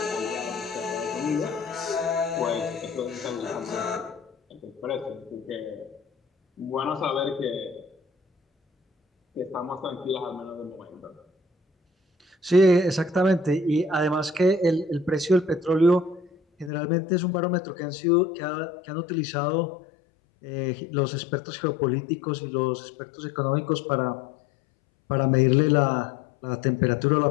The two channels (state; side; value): drops out; right; at 16.7 s